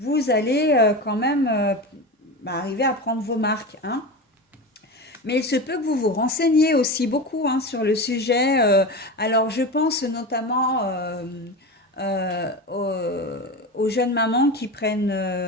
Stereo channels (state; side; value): normal; both; correlation 0.25